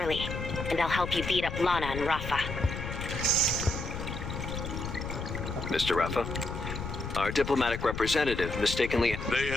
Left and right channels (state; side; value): noise; left; rumble, 6 dB below the sound